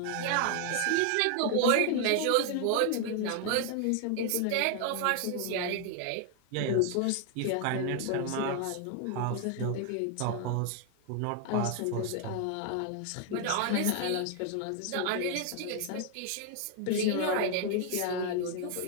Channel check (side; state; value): both; different; correlation 0.00